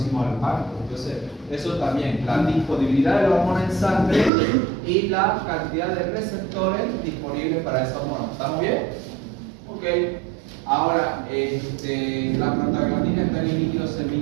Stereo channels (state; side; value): drops out; left; at 4.3 s